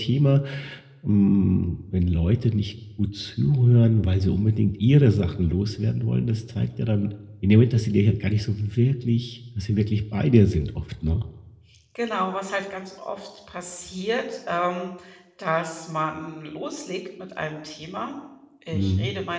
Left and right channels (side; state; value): both; identical; correlation 1.00